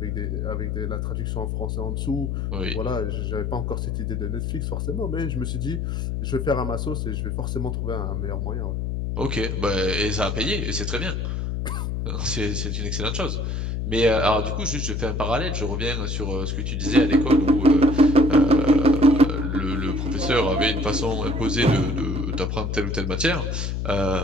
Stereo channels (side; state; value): left; noise; hum, 2 dB below the sound